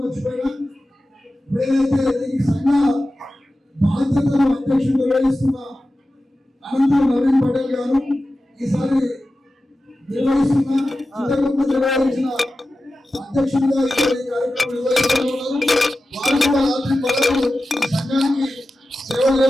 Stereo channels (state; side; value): normal; both; correlation 0.94